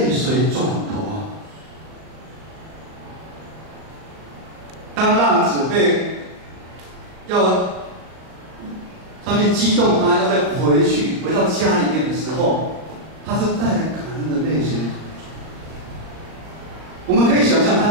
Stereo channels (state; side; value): late; left; 38 ms